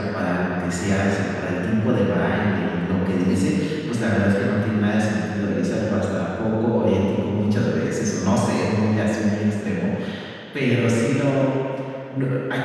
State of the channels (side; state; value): both; identical; correlation 1.00